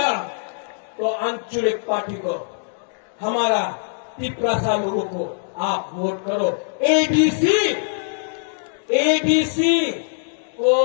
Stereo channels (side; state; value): right; silent; digital silence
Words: तो आंचलिक पार्टी को, हमारा पिपरासा लोगों को आप वोट करो। एडीसी को